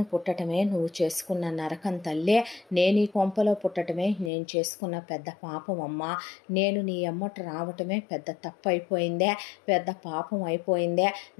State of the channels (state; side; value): drops out; right; at 4.3 s